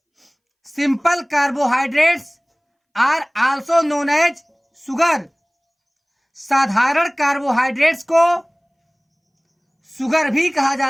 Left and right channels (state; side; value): identical; both; correlation 1.00